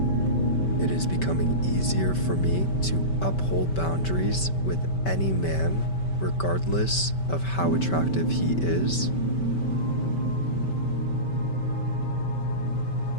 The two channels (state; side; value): late; right; 5.2 ms